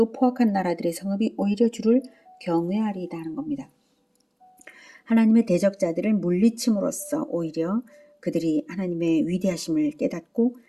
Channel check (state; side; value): identical; both; correlation 1.00